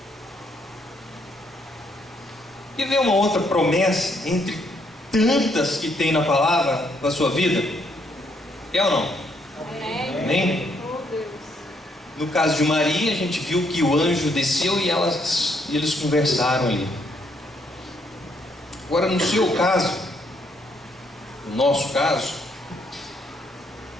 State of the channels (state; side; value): normal; both; correlation 0.72